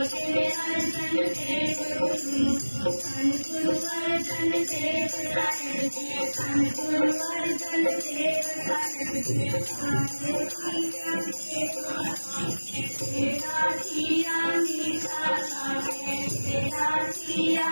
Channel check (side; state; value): both; inverted; correlation -1.00